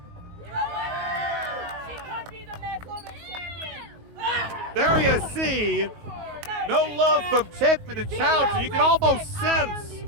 There you see, no love from Tiffany Challenge. You can almost sense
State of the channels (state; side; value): late; left; 19 ms